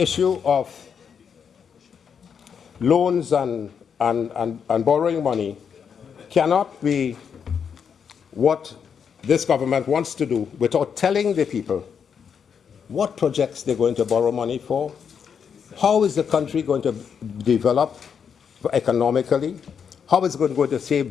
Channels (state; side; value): quieter; right; 7.0 dB